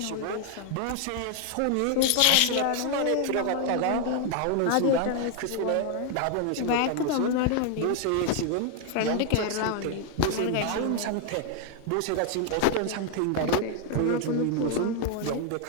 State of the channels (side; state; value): both; different; correlation 0.00